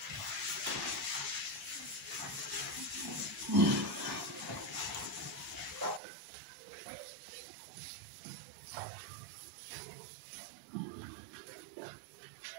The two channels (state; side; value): drops out; left; at 6.0 s